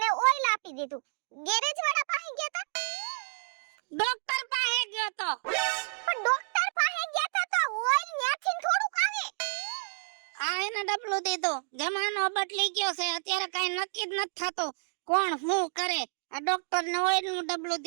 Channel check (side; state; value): left; silent; digital silence